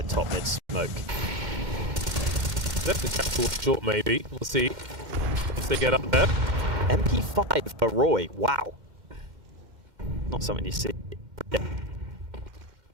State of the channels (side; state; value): left; late; 2.1 ms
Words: top mid smoke. Left the chat towards short maybe. We'll see. Once they get up there. MP5 for Roy. Wow. Not something you see. Yeah.